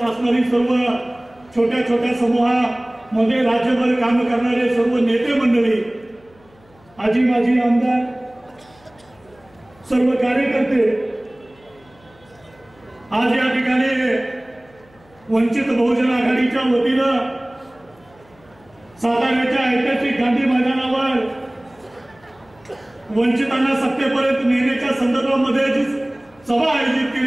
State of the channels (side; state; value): left; noise; hum, 29 dB below the sound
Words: असणारी सर्व छोट्या छोट्या समूहामध्ये राज्यभर काम करणारे सर्व नेते मंडळी, आजी माजी आमदार, सर्व कार्यकर्ते, आज या ठिकाणी वंचित बहुजन आघाडीच्या वतीनं साताऱ्याच्या ऐतिहासिक गांधी मैदानावर वंचितांना सत्तेपर्यंत नेण्याच्या संदर्भामध्ये जी सभा आयोजित